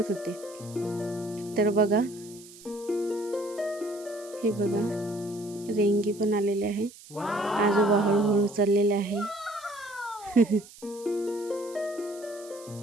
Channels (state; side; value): noise; right; hiss, 20 dB below the sound